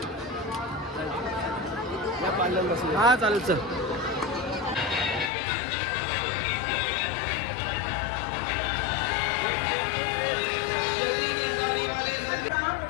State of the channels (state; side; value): drops out; right; at 5.3 s